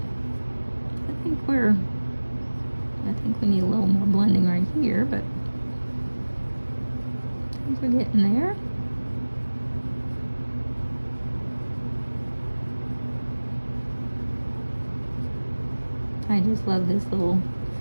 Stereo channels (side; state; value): both; inverted; correlation -1.00